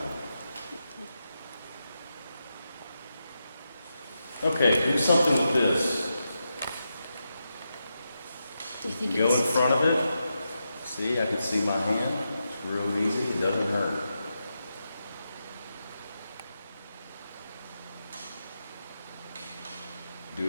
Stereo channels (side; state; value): both; inverted; correlation -0.87